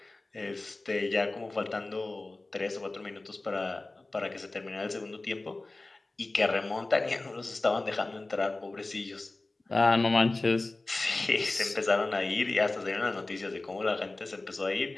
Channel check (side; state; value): right; quieter; 3.1 dB